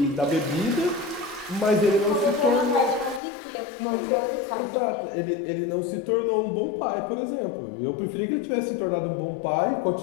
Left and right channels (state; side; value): drops out; right; at 3.2 s